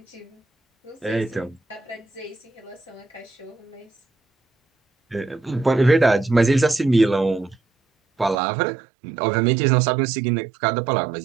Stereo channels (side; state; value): left; drops out; at 8.3 s